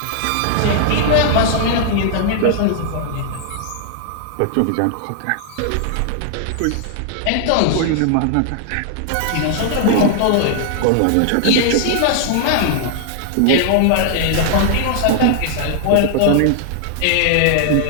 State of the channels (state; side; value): different; both; correlation 0.00